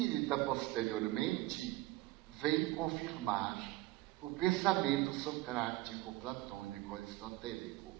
posteriormente, vem confirmar o pensamento socrático, platônico, aristotélico,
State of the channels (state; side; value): quieter; left; 18.4 dB